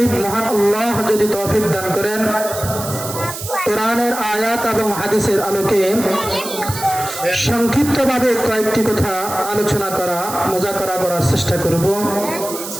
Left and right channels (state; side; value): noise; right; hiss, 9 dB below the sound